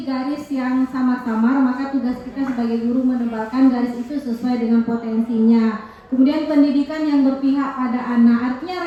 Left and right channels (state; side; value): identical; both; correlation 1.00